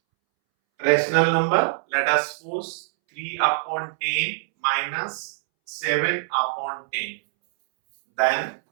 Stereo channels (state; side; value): silent; left; 63 dB below the other